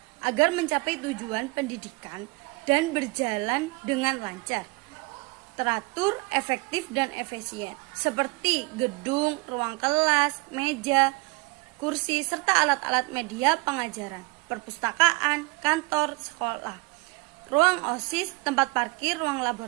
agar mencapai tujuan pendidikan dan berjalan dengan lancar, teratur, efektif, dan efisien, seperti gedung, ruang kelas, meja, kursi, serta alat-alat media pengajaran, perpustakaan, kantor, sekolah, ruang OSIS, tempat parkir, ruang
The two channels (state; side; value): quieter; left; 25.8 dB